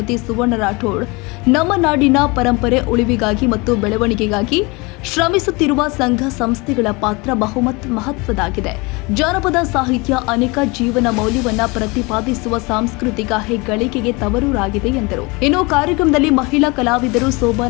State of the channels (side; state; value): right; quieter; 26.4 dB